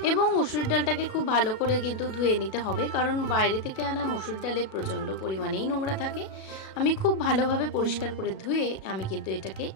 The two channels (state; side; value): late; right; 37 ms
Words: এবং মুসুরির ডালটাকে খুব ভালো করে কিন্তু ধুয়ে নিতে হবে, কারণ বাইরে থেকে আনা মুসুর ডালে প্রচণ্ড পরিমাণেই নোংরা থাকে। আমি খুব ভালোভাবে পরিষ্কার করে ধুয়ে আমি কিন্তু এটাকে